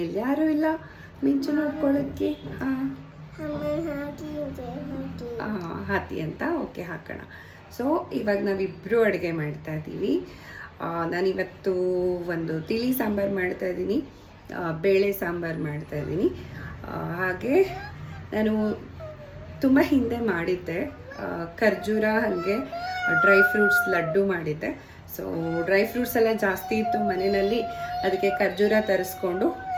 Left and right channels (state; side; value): identical; both; correlation 1.00